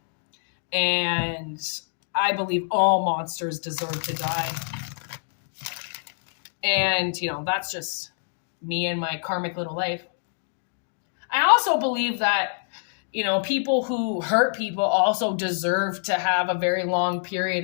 And I believe all monsters deserve to die. And, you know, that's just me and my karmic little life. I also believe that, you know, people who hurt people also deserve to have a very long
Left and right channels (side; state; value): right; silent; digital silence